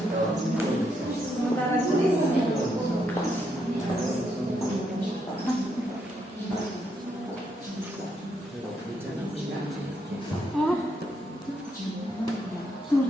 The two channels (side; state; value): both; normal; correlation 0.77